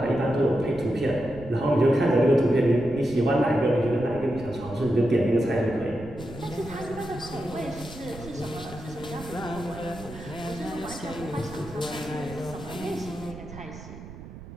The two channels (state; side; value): noise; right; rumble, 14 dB below the sound